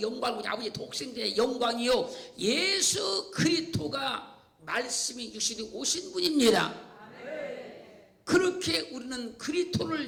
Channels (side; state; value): both; identical; correlation 1.00